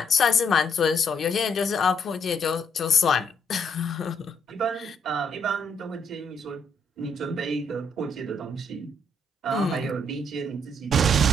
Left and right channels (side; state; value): both; normal; correlation 0.71